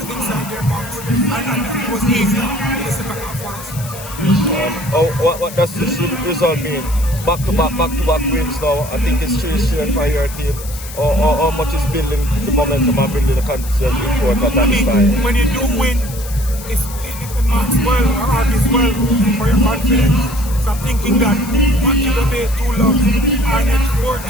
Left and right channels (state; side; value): noise; left; hiss, 14 dB below the sound